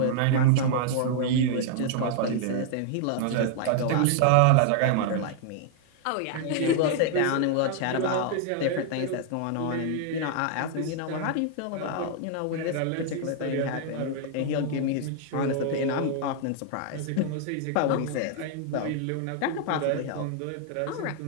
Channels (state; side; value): different; both; correlation 0.00